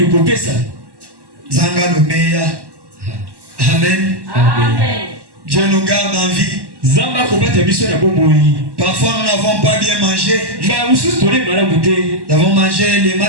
Zanga le meilleur. Amen. Amen. Dieu nous garde en vie. Parfois nous n'avons pas bien mangé. Nous avons mangé les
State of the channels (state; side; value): late; left; 1.1 ms